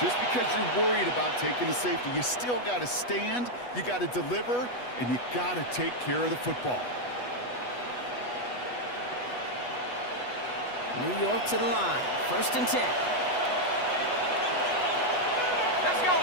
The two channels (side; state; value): right; late; 8.2 ms